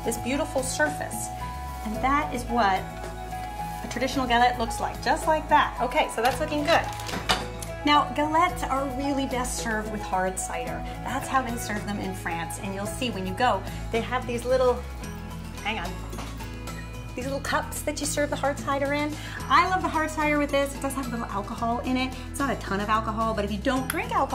this beautiful surface. And that is what a traditional galette looks like, just like that. Okay, so that's looking good. Now, galettes are really best served with hard cider. That's how they serve them in France. And you'll see when you go, they have these little, these little cups that you serve the hard cider in. I love the hard cider with this. It does have a little alcohol in it. It's not a ton of alcohol, but if you don't drink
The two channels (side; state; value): both; identical; correlation 1.00